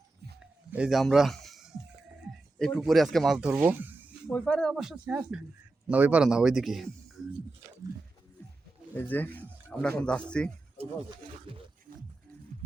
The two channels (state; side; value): quieter; left; 3.2 dB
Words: এই যে আমরা এই পুকুরে আজকে মাছ ধরবো। ওই পারে অবশ্য শেষ না, ওই পারে না, ওইদিকে। এই যে আমরা এখন যাচ্ছি।